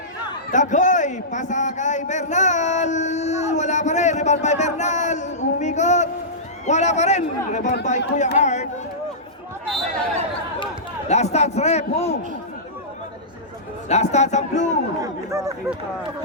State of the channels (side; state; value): both; normal; correlation -0.18